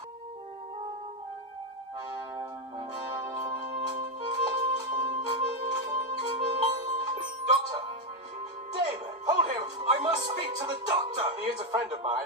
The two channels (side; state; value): both; normal; correlation 0.05